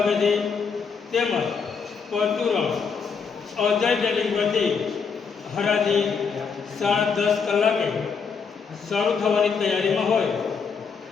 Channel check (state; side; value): quieter; right; 5.7 dB